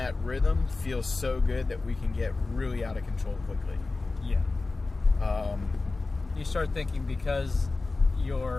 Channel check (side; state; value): right; quieter; 3.6 dB